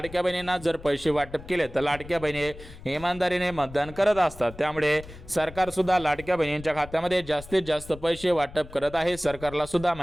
बहिणींना जर पैसे वाटप केले तर लाडक्या बहिणी इमानदारीने मतदान करत असतात. त्यामुळे सरकार सुद्धा लाडक्या बहिणींच्या खात्यामध्ये जास्तीत जास्त पैसे वाटप करत आहे. सरकारला सुद्धा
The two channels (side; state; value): left; noise; rumble, 16 dB below the sound